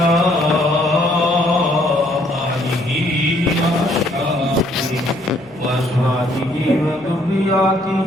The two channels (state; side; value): noise; left; hum, 25 dB below the sound